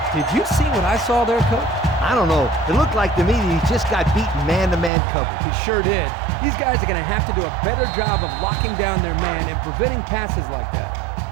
Did you see what I saw there, Coach? I don't know. It looked like to me that he just got beaten man-to-man coverage. He sure did. These guys are going to have to do a better job of locking down their man and preventing passes like that.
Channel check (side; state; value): left; drops out; at 4.9 s